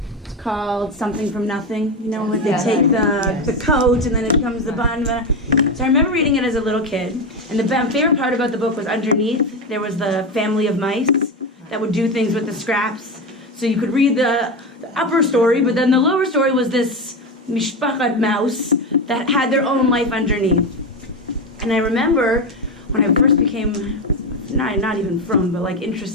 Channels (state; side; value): normal; both; correlation 0.16